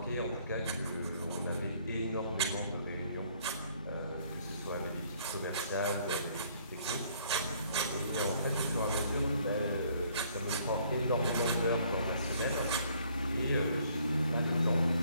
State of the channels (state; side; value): inverted; both; correlation -0.63